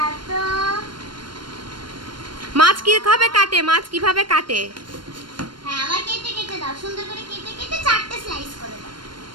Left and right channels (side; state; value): left; late; 0.72 ms